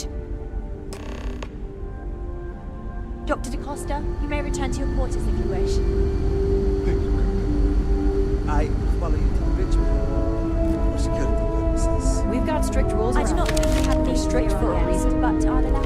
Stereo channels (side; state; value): both; identical; correlation 1.00